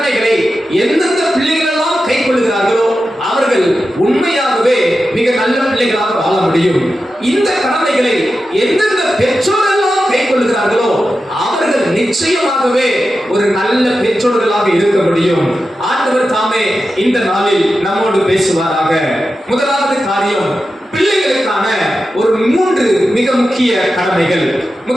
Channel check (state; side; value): normal; both; correlation 0.91